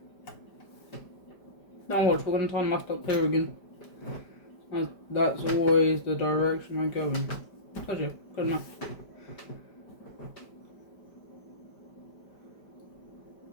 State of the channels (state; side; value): late; right; 5.1 ms